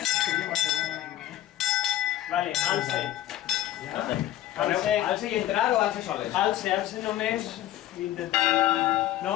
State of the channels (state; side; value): quieter; right; 13.5 dB